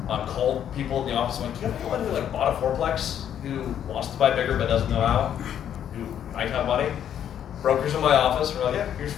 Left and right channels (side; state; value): right; quieter; 9.7 dB